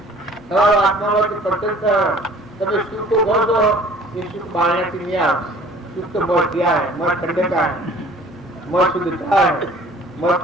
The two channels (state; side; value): normal; both; correlation 0.51